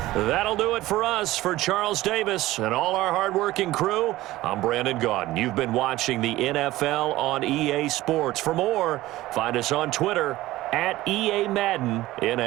That'll do it for us. For Charles Davis and all our hardworking crew, I'm Brandon Gaudin. You've been watching the NFL on EA Sports. For more, find us on Twitter @EA Madden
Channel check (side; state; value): left; quieter; 16.9 dB